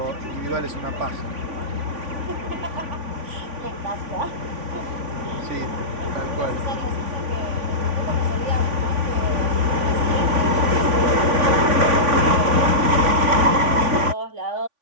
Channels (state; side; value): late; left; 3.5 ms